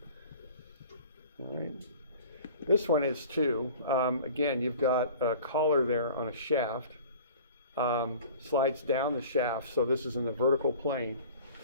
All right. This one is too. Again, you've got a collar there on a shaft. Slides down the shaft, so this is in the vertical plane.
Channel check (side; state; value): both; inverted; correlation -0.45